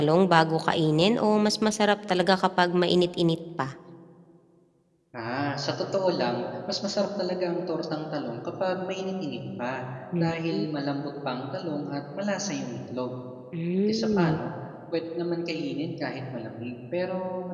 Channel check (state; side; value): identical; both; correlation 1.00